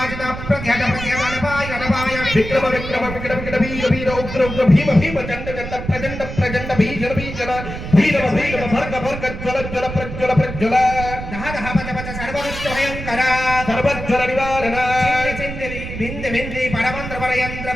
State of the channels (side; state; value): right; noise; rumble, 8 dB below the sound